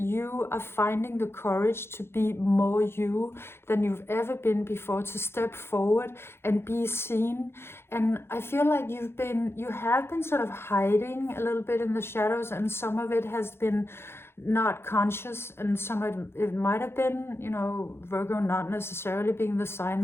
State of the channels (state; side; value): late; right; 0.12 ms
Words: are finding the courage to be more you than you've ever been before, to step forward and be seen. And I feel like you have been sort of hiding a little bit in the shadows, and some of it has been not conscious, and some of it might have been, you know, Virgo not necessarily being the sign